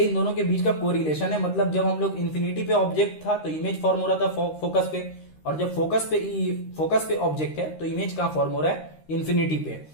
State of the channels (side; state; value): right; late; 13 ms